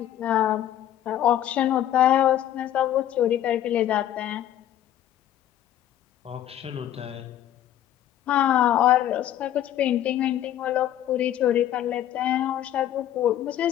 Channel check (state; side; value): quieter; right; 11.7 dB